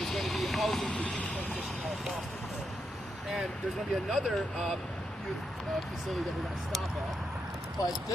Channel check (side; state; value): both; normal; correlation 0.83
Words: is going to be housing for youth transition out of foster care. And there's going to be another youth facility that we're going to stop at. But